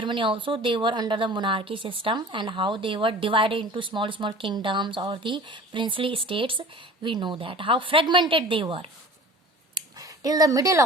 also, they were under the monarchy system, and how they were divided into small kingdoms or the princely states. We know that how fragmented they were till the middle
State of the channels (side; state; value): both; normal; correlation 0.42